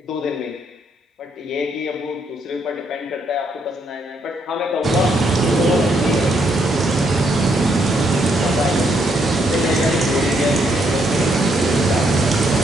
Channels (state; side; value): normal; both; correlation 0.74